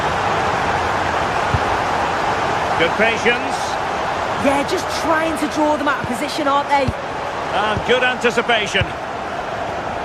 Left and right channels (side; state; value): both; identical; correlation 1.00